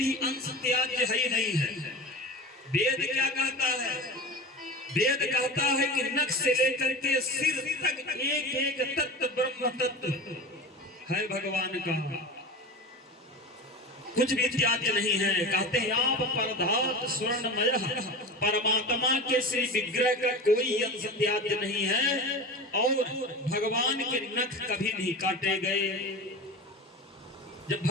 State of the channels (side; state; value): both; normal; correlation 0.30